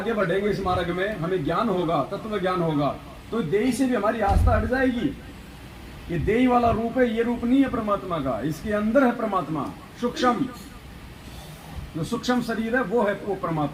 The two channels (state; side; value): identical; both; correlation 1.00